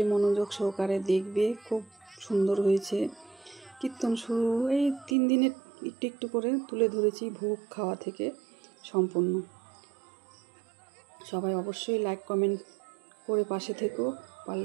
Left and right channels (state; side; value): drops out; left; at 5.2 s